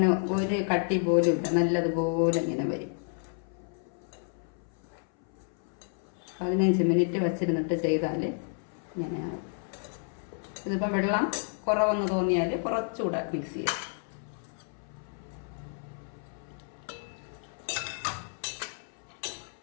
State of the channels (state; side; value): silent; right; 57 dB below the other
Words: ഒരു കട്ടി പോലും ഇല്ല, നല്ലതുപോലെ ഇങ്ങനെ വരും. 15 മിനിറ്റ് വച്ചിരുന്നിട്ട് ചെയ്താൽ ഇങ്ങനെയാണ്. ഇതിപ്പോൾ വെള്ളം കുറവെന്ന് തോന്നിയാൽ കുറച്ചുകൂടെ മിക്സ് ചെയ്യാം.